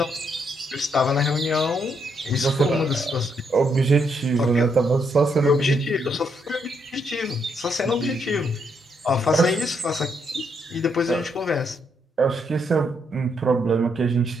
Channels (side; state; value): both; normal; correlation 0.76